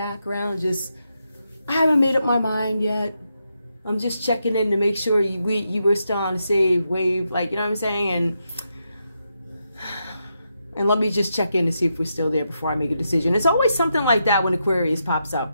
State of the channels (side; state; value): both; inverted; correlation -0.84